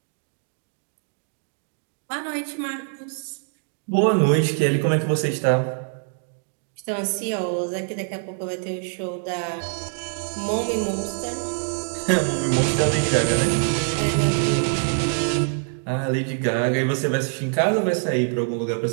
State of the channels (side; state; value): left; silent; 62 dB below the other